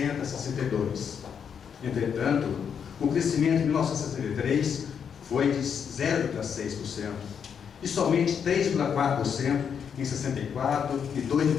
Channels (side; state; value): right; quieter; 7.3 dB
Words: a 62. Entretanto, o crescimento de 1963 foi de 0,6% e somente 3,4% em 64 e